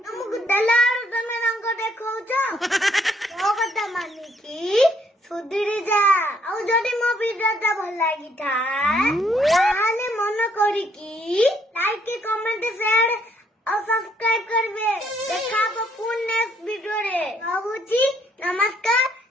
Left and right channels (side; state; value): both; normal; correlation 0.68